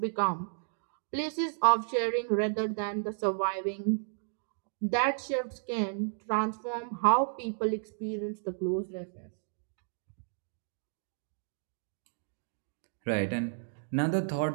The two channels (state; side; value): silent; left; digital silence